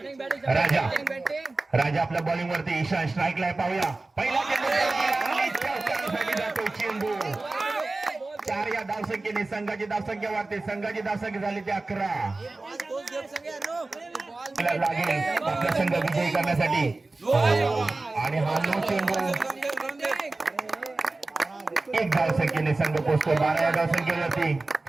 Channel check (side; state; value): left; quieter; 3.2 dB